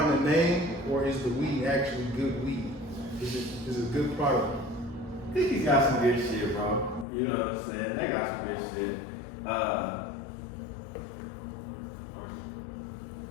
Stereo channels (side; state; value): right; drops out; at 7.1 s